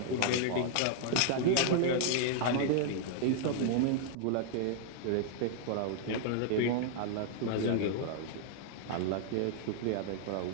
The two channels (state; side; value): different; both; correlation -0.01